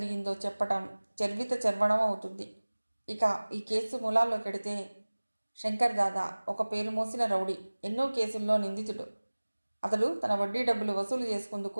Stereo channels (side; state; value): both; inverted; correlation -1.00